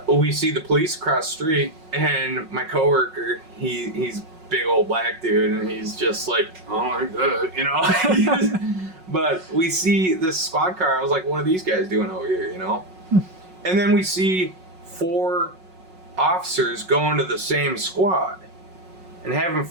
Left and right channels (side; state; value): left; late; 5.4 ms